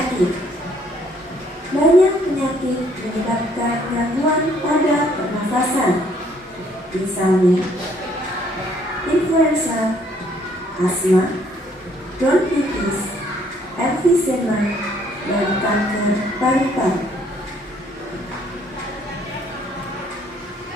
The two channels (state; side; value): normal; both; correlation 0.64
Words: Banyak penyakit menyebabkan gangguan pada pernafasan. Misalnya, influenza, asma, bronkitis, emfisema, dan kanker paru-paru.